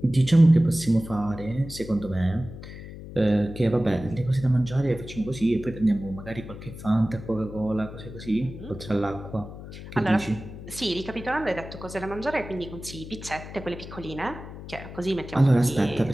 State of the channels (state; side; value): noise; left; hum, 13 dB below the sound